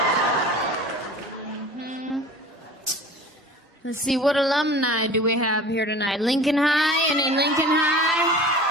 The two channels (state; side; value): normal; both; correlation 0.40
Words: Let's see, what alumni do we have here tonight? Lincoln High? Any Lincoln High?